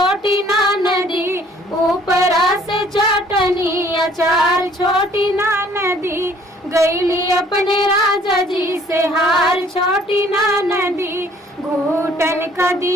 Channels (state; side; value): normal; both; correlation 0.58